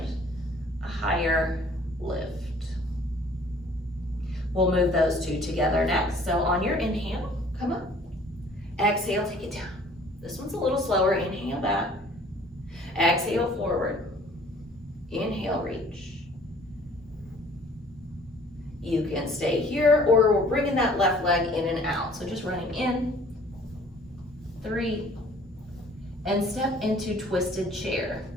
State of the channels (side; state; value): both; normal; correlation 0.54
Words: a higher lift. We'll move those two together next. So on your inhale, come up. Exhale, take it down. This one's a little slower. Inhale back. Exhale forward. Inhale, reach. You can stay here, or we're bringing that left leg in and out. So just running in, 3, and step into twisted chair.